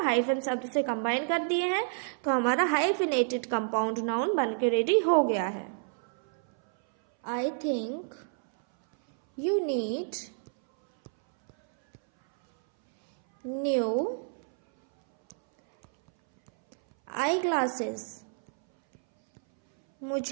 हाइफन शब्द से कंबाइन कर दिए हैं, तो हमारा हाइफिनेटेड कंपाउंड नाउन बन के रेडी हो गया है। I think you need new eye glasses.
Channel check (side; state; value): left; silent; 59 dB below the other